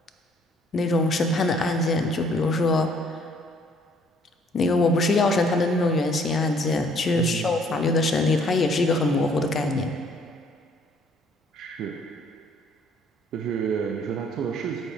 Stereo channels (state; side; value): normal; both; correlation 0.62